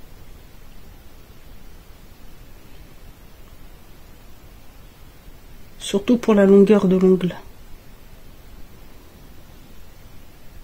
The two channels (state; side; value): identical; both; correlation 1.00